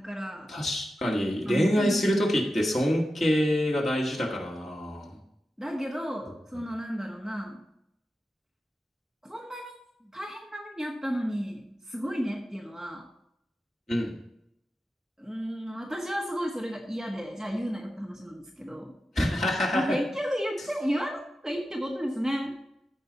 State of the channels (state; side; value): normal; both; correlation 0.92